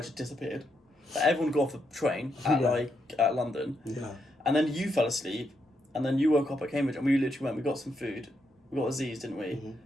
had disappeared. Like, everyone got off the train at London, and then you fell asleep, and then you woke up at Cambridge, and we literally we got some food, we got Aziz, didn't we? Mm-hmm.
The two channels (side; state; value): both; normal; correlation 0.80